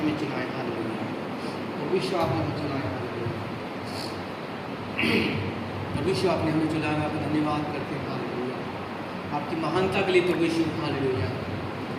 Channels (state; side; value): identical; both; correlation 1.00